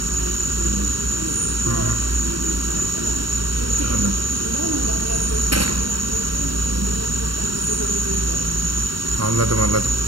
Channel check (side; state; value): left; late; 0.72 ms